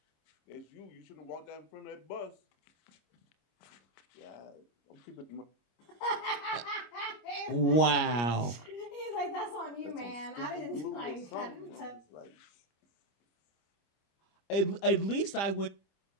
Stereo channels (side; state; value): right; late; 25 ms